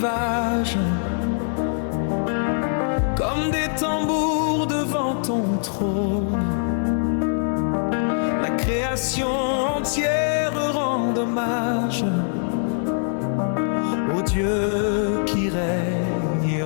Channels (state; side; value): silent; right; 64 dB below the other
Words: comme des tambours devant ton trône. La création entière rend hommage au Dieu qui règne et